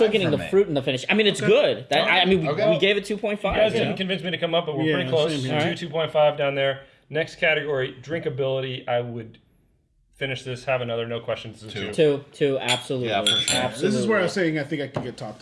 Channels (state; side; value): identical; both; correlation 1.00